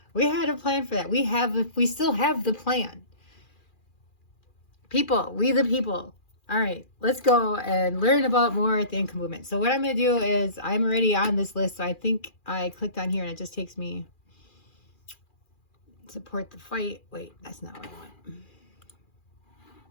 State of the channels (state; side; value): late; right; 2.4 ms